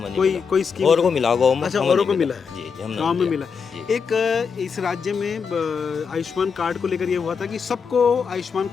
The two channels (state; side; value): quieter; right; 6.0 dB